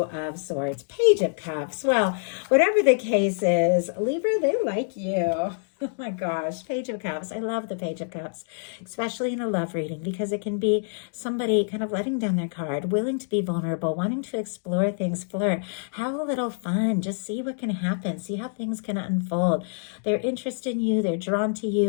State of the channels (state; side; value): silent; right; digital silence